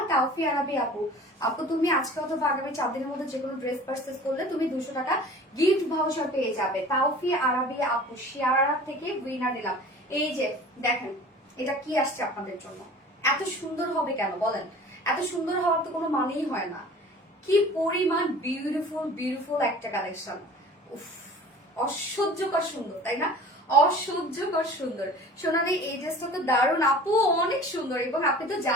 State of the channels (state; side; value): normal; both; correlation 0.43